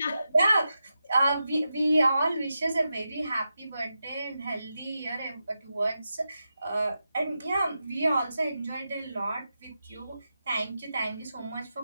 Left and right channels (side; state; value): both; inverted; correlation -0.89